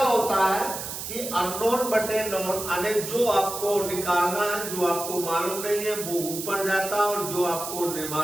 होता है कि अननोन बटे नोन, यानी जो आपको निकालना है, जो आपको मालूम नहीं है वो ऊपर जाता है और जो आपको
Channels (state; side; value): noise; right; hiss, 7 dB below the sound